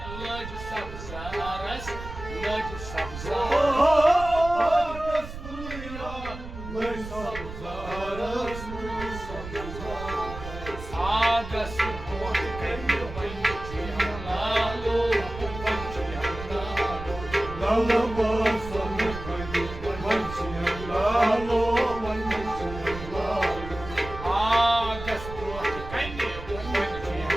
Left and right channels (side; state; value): right; noise; rumble, 11 dB below the sound